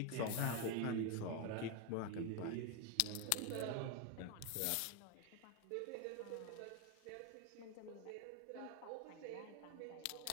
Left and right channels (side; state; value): both; different; correlation 0.01